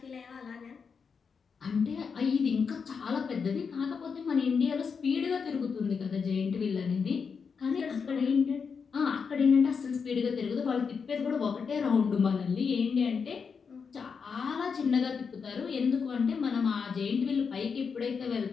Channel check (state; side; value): quieter; right; 5.8 dB